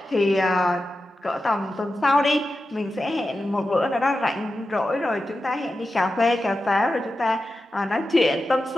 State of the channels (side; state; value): both; normal; correlation 0.92